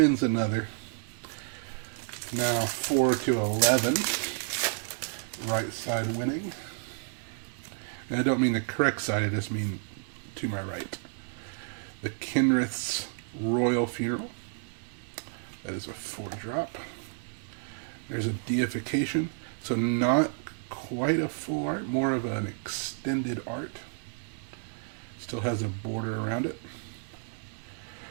another. Now 4 to 11. Right side winning. And I don't mean the correct side, I just mean to my right. The Kinrith's Royal Funeral. That is a 4-drop. There's a Deification. So not quite a full art, more of an extended art. Still has a border around it.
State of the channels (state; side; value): silent; left; 57 dB below the other